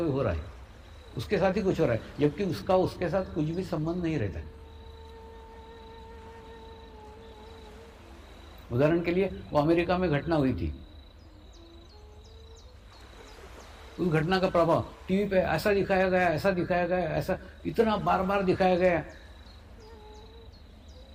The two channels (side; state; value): both; identical; correlation 1.00